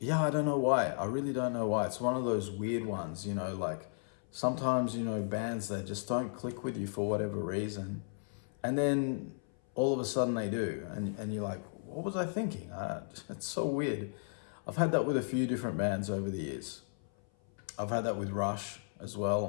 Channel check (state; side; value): silent; right; 55 dB below the other